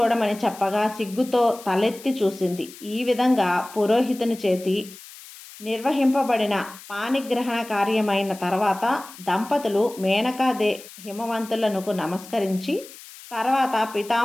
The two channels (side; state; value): left; noise; hiss, 18 dB below the sound